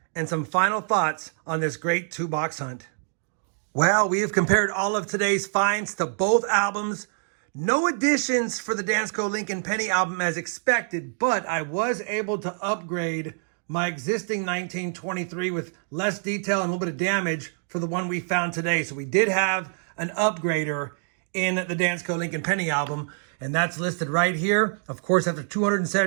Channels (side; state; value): left; silent; 58 dB below the other